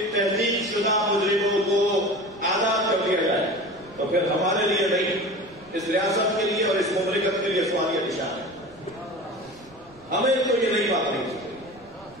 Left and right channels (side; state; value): right; noise; rumble, 26 dB below the sound